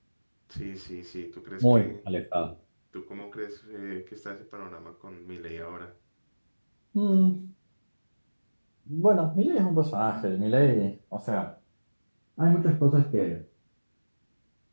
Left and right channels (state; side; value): inverted; both; correlation -1.00